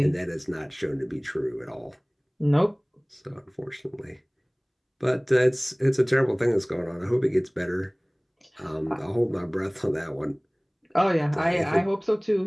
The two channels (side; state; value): both; identical; correlation 1.00